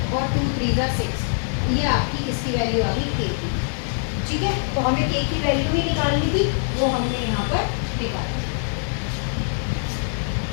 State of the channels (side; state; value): right; silent; digital silence